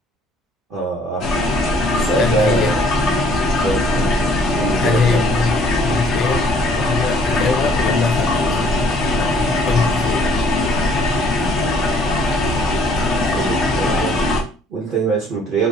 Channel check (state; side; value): normal; both; correlation 0.60